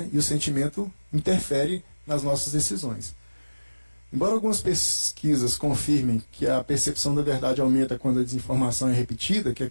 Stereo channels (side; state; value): both; inverted; correlation -1.00